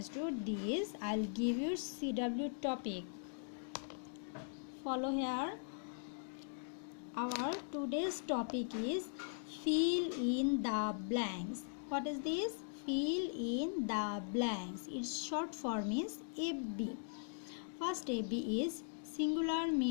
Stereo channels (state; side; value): silent; right; digital silence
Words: this, I'll give you CW topic. Follow here. Our today's topic is fill in the blanks. What is this? Fill in the blanks. Its short form is FB. First FB is singular